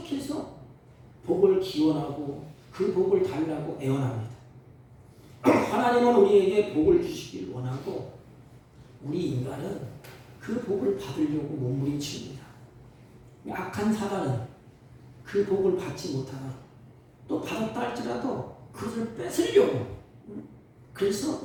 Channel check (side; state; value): both; identical; correlation 1.00